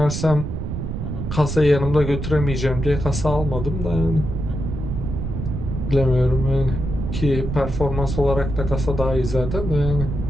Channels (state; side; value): noise; right; rumble, 4 dB below the sound